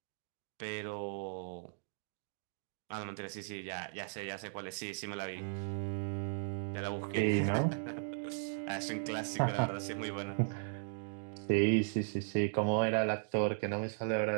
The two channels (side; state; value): left; silent; digital silence